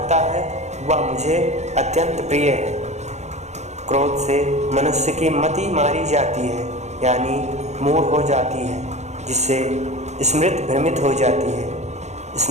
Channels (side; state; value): left; late; 0.33 ms